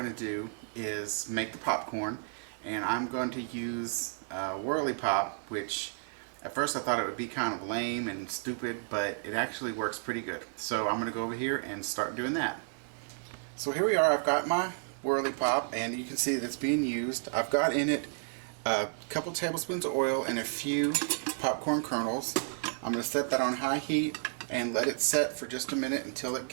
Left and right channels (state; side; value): silent; left; 56 dB below the other